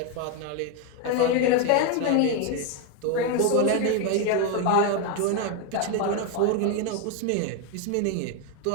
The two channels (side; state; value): both; different; correlation 0.02